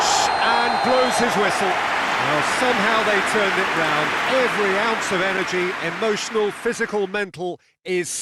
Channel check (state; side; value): identical; both; correlation 1.00